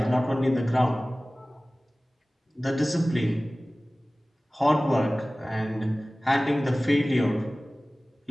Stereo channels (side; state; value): both; normal; correlation 0.98